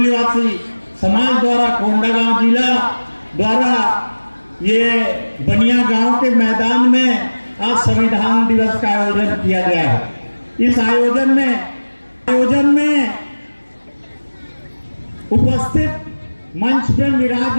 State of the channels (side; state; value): both; inverted; correlation -1.00